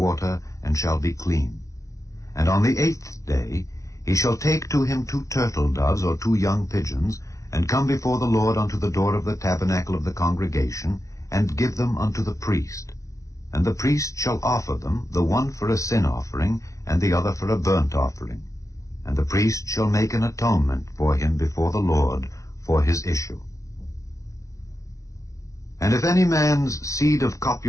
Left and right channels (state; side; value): late; right; 0.15 ms